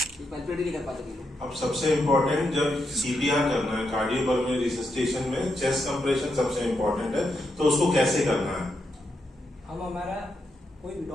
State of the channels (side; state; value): both; normal; correlation 0.83